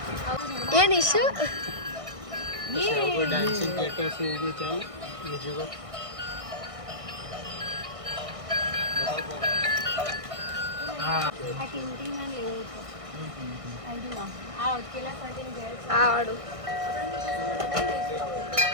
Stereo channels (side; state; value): left; late; 1.6 ms